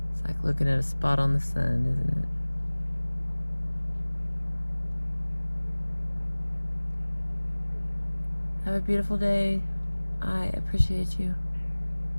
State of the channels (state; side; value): inverted; both; correlation -1.00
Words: It's like looking at a spot on the sun, isn't it? Have a beautiful day. I appreciate you.